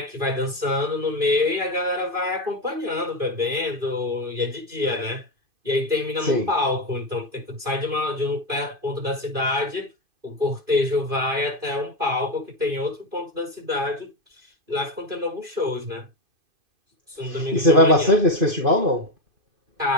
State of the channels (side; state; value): left; late; 2.5 ms